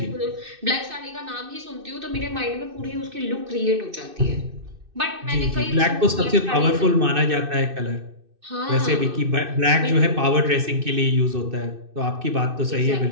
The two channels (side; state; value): left; late; 2.6 ms